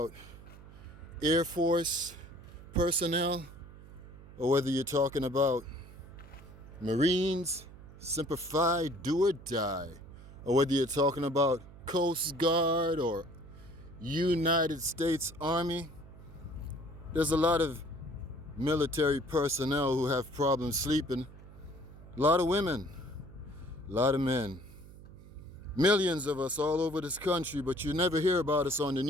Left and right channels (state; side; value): noise; right; hum, 18 dB below the sound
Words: Air Force personnel, or whether you're talking about Marines, Semper Fi, do or die, or whether you're talking about Coast Guard or United States Army. There's a lot of military personnel who have problems sleeping. A lot of women, a lot of men. Millions of us all over this country, but you never hear about us on the